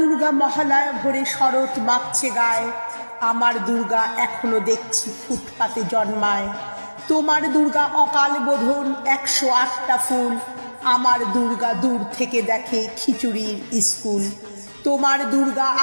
মহালয়া ভরে শরৎ মাখছে গায়ে, আমার দুর্গা এখনো দেখছি ফুটপাতে জন্মায়। তোমার দুর্গা অকাল বোধন 108টা ফুল, আমার দুর্গা দূর থেকে দেখে খিচুড়ির স্কুল। তোমার দুর্গা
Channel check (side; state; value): both; inverted; correlation -1.00